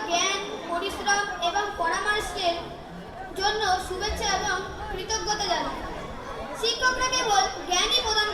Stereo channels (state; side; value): identical; both; correlation 1.00